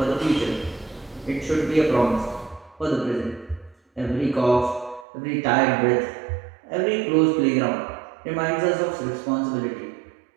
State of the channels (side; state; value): left; drops out; at 5.1 s